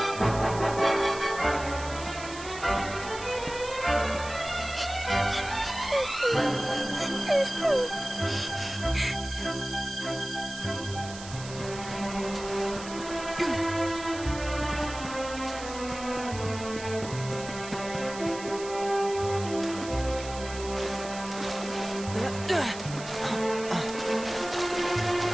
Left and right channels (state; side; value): noise; right; hiss, 13 dB below the sound